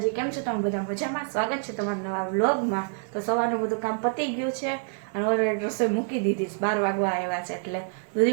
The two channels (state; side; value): silent; left; 60 dB below the other